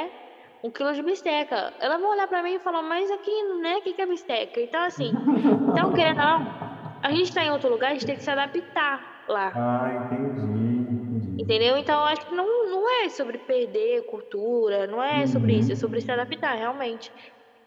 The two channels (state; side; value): identical; both; correlation 1.00